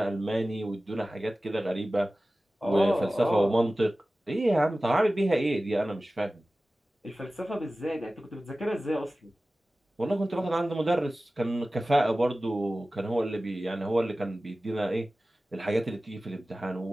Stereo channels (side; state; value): both; normal; correlation 0.96